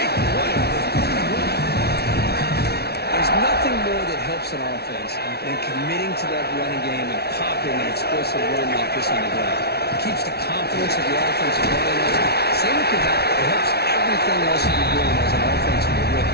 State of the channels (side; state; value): right; late; 0.47 ms